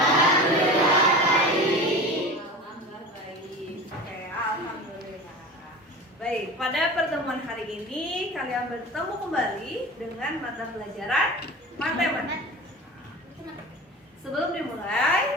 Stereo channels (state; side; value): normal; both; correlation 0.33